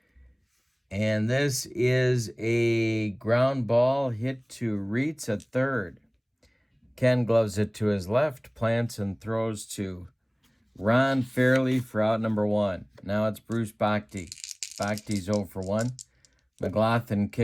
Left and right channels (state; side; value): identical; both; correlation 1.00